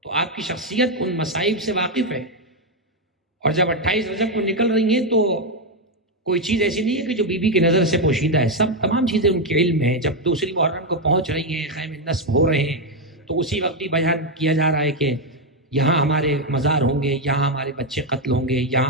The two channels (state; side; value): normal; both; correlation 0.04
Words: تو آپ کی شخصیت ان مصائب سے واقف ہے۔ اور جب 28 رجب کو نکل رہی ہیں تو کوئی چیز ایسی نہیں ہے کہ جو بی بی کی نظر سے پوشیدہ ہے، تمام چیزیں ان کے علم میں ہیں۔ جب دوسری محرم کو پہنچ رہی ہیں، خیمے نصب ہو رہے ہیں، تو اسی وقت بھی بیان کیا جا رہا ہے کہ یہاں ہمارے مزار ہوں گے، یہاں ہمارے بچے قتل ہوں گے،